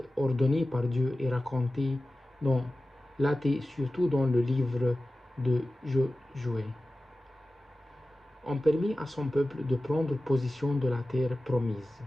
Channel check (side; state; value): both; normal; correlation 0.95